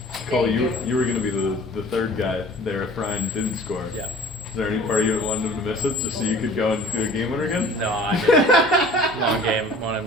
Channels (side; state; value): both; normal; correlation 0.48